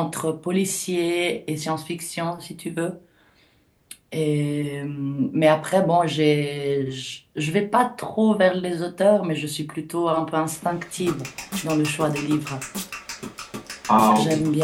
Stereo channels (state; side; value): identical; both; correlation 1.00